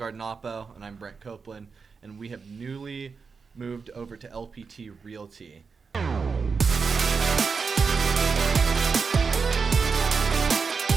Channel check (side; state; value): left; quieter; 5.2 dB